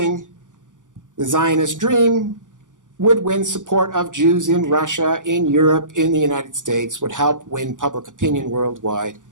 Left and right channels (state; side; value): late; left; 0.87 ms